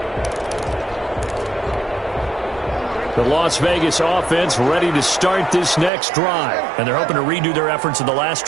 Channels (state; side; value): drops out; left; at 5.9 s